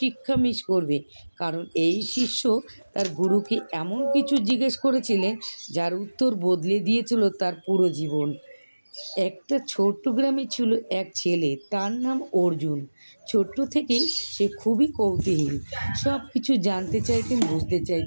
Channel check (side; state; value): both; inverted; correlation -1.00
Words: মিস করবে। কারণ এই শিষ্য তার গুরুকে এমন কিছু জিজ্ঞেস করেছিলেন যার উত্তর বদলে দিয়েছিল তার পুরো জীবন। একটা ছোট্ট গ্রামে ছিল এক ছেলে, তার নাম অর্জুন। ছোট্ট থেকেই সে খুবই কৌতূহলী, সব কিছু জানতে চাইতেন, বুঝতে